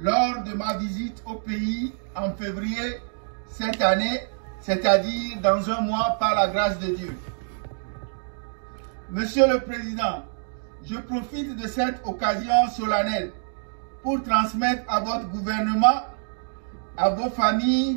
de ma visite au pays en février cette année, c'est-à-dire dans un mois par la grâce de Dieu. Monsieur le Président, je profite de cette occasion solennelle pour transmettre à votre gouvernement, à vos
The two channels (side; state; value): left; silent; digital silence